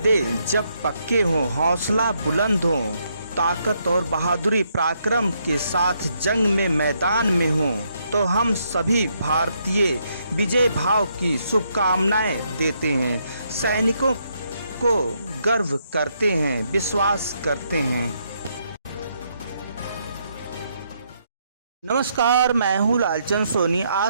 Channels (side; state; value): both; inverted; correlation -0.75